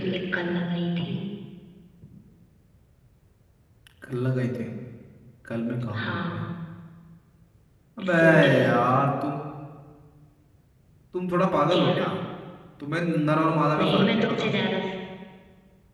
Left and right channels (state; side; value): identical; both; correlation 1.00